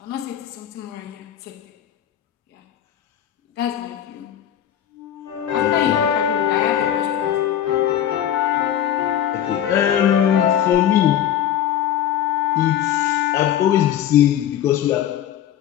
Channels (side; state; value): right; quieter; 10.7 dB